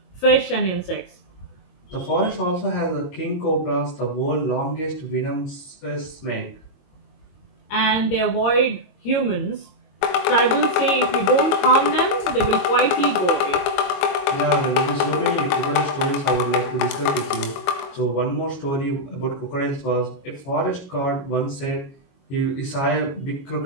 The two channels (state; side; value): late; right; 22 ms